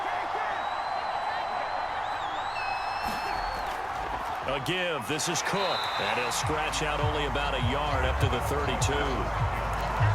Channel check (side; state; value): both; identical; correlation 1.00